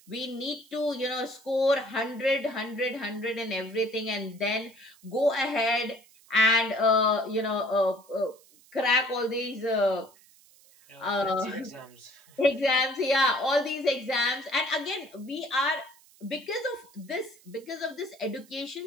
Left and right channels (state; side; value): noise; right; hiss, 27 dB below the sound